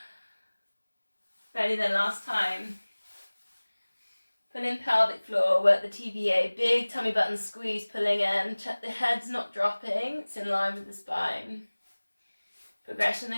Ready then, last time. Pull in pelvic floor, work the TVA, big tummy button squeeze, pulling in. Check the head's not dropping, it's in line with the spine. Progression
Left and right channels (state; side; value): inverted; both; correlation -1.00